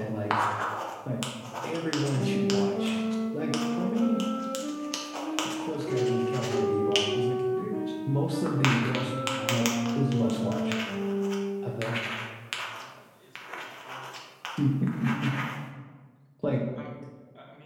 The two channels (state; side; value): identical; both; correlation 1.00